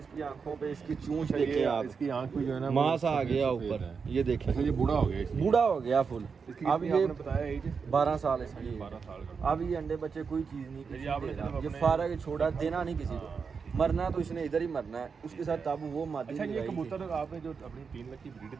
आंखों पे इसकी चूंच अच्छा, देखें ये आप, इसकी आंख पे जो है ना मांस वो आ गया सफेद ऊपर। है। ये देखें, अच्छा, ये बूढ़ा हो गया इसलिए? बूढ़ा हो गया फुल। इसकी अब कितनी ये आपने बताया एज? 12 साल इसकी। 12 साल का। अब ये अंडे बच्चे कोई चीज़ नहीं किसी ये आपने दे रहा। सिर्फ ये अपने- फारग छोड़ा, देना नहीं किसी को। हाँ, मरना तो इसने इधर ही मरना है। उसके साथ तब वो मादी अच्छा, ये लगाई थी। कबूतर आपने जो अपनी 3 लाख की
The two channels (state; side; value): quieter; left; 5.6 dB